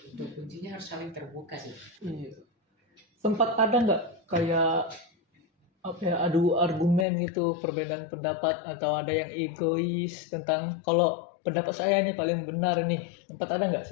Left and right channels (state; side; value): drops out; right; at 7.1 s